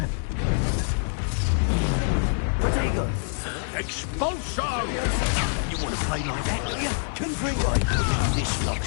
Protego. Expulso! You want to play like that, do you? Confringo. This lot.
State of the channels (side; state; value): right; silent; digital silence